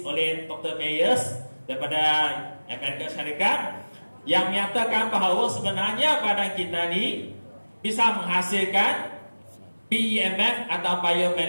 oleh Dr. Myers daripada Amerika Syarikat yang menyatakan bahawa sebenarnya badan kita ni bisa menghasilkan BEMF atau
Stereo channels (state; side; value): inverted; both; correlation -1.00